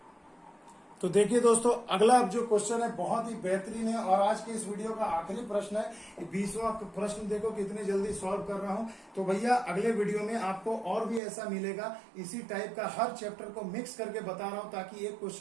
तो देखिए दोस्तों, अगला अब जो क्वेश्चन है बहुत ही बेहतरीन है और आज के इस वीडियो का आखिरी प्रश्न है। 20वां प्रश्न देखो कितनी जल्दी सॉल्व कर रहा हूं। तो भैया अगले वीडियो में आपको और भी ऐसा मिलेगा, इसी टाइप का हर चैप्टर को मिक्स करके बता रहा हूं ताकि एक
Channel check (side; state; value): left; drops out; at 11.2 s